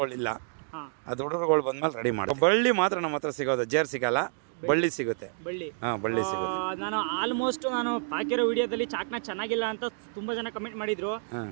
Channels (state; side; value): silent; left; digital silence